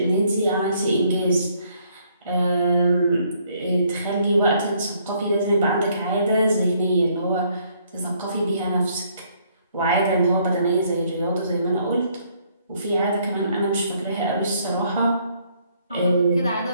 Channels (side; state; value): both; inverted; correlation -0.67